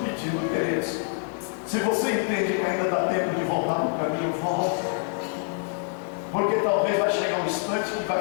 queridos, se você entende que ainda dá tempo de voltar para o caminho, volta. Porque talvez vai chegar um instante que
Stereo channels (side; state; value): right; silent; 57 dB below the other